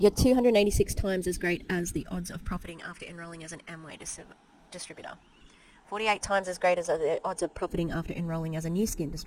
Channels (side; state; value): both; identical; correlation 1.00